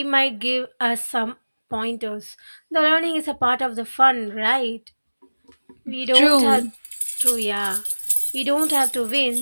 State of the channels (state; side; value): inverted; both; correlation -1.00